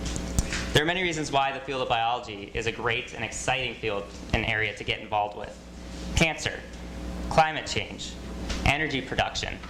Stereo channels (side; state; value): both; identical; correlation 1.00